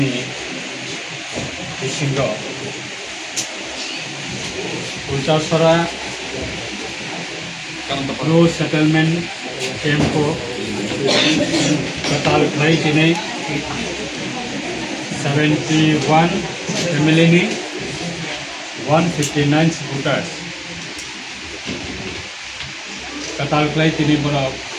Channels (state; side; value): identical; both; correlation 1.00